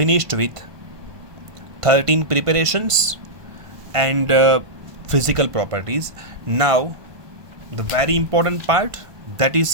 with 13 preparations and physical properties. Now the very important part, that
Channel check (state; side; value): late; left; 1.4 ms